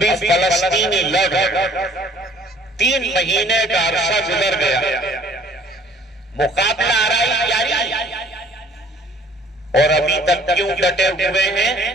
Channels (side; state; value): both; normal; correlation 0.55